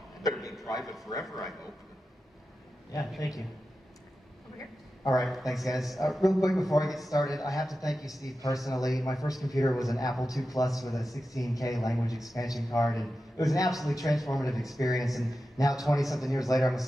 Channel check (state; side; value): normal; both; correlation 0.92